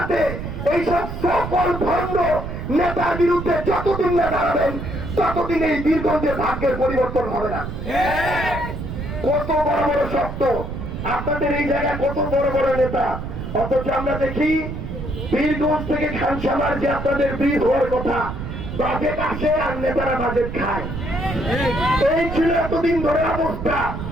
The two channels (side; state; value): right; noise; rumble, 6 dB below the sound